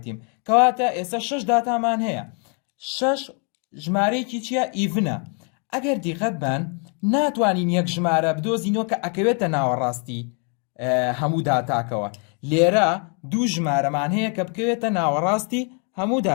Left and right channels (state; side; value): quieter; right; 39.2 dB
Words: کەواتە ئێستا 6 داتامان هەیە. 6 ژمارەیەکی چییە؟ ئیڤنە. ئەگەر دیقەت بن ناتوانین یەک ژمارە بدۆزینەوە کە ئەکەوێتە ناوەڕاستی هەموو داتاکەوە. لێرە دوو ژمارەمان هەیە کە بکەوێتە ناوەڕاستی هەموو